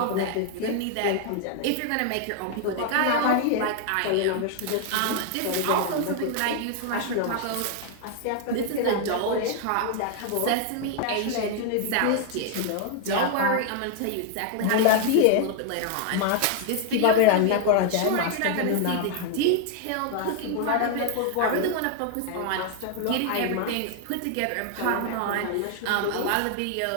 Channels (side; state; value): both; different; correlation 0.00